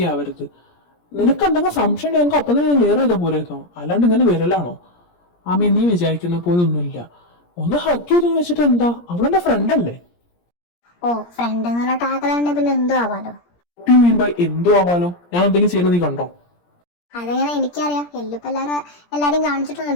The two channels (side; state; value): right; late; 17 ms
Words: ആവരുത്. നിനക്ക് എന്തെങ്കിലും സംശയം എനിക്ക് അപ്പം തന്നെ ക്ലിയർ ചെയ്താൽ പോലെയോ? അല്ലാണ്ട് ഇങ്ങനെ വരലാണോ? ആമി, നീ വിചാരിക്കുന്ന പോലെ ഒന്നുമില്ല. ഒന്ന് ഹഗ് ചെയ്ത് വെച്ചിട്ട് എന്താ? അവളെന്റെ ഫ്രണ്ട് അല്ലേ? ഓ, ഫ്രണ്ട് എന്നുള്ള ടാഗിലാണ്ട് പിന്നെ എന്തോ ആവാലോ. എന്തോ ആവാലോ? ഞാൻ എന്തെങ്കിലും ചെയ്യുന്നത് നീ കണ്ടോ? അതെങ്ങനെ എനിക്കറിയാം. എല്ലിപ്പോ എല്ലാരും